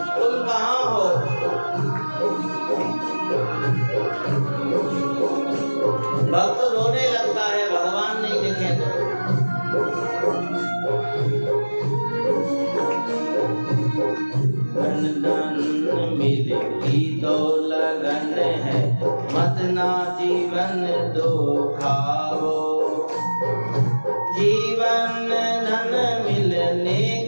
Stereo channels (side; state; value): both; inverted; correlation -1.00